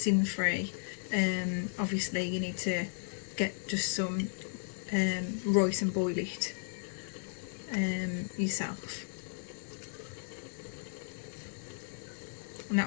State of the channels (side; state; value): right; silent; 55 dB below the other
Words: free, obviously you need to get just some rice and boil it yourself, and that